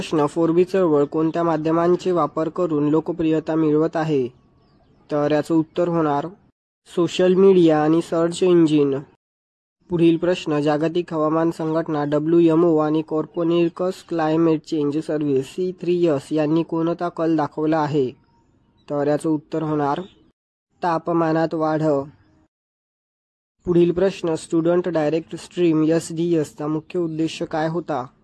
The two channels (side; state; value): both; identical; correlation 1.00